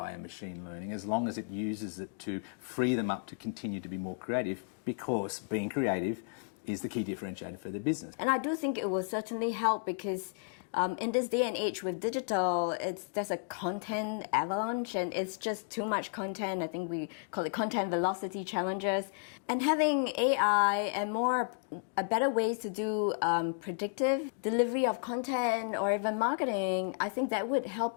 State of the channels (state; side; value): silent; right; digital silence